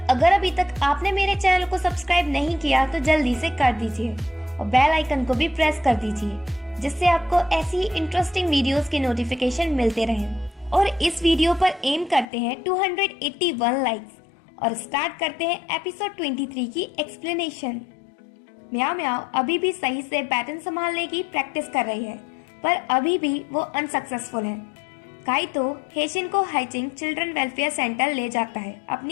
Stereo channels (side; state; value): right; drops out; at 12.2 s